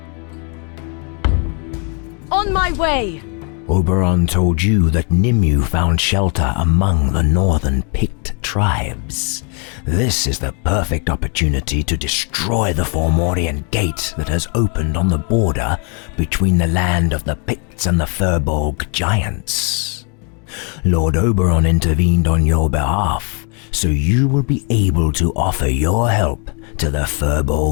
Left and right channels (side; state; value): right; quieter; 37.3 dB